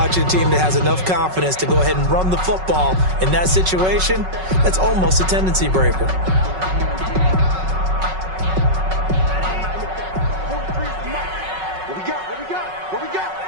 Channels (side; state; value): left; late; 5.4 ms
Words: a team that has enough confidence to go ahead and run the football. In that situation, that's almost a tendency breaker. What we got?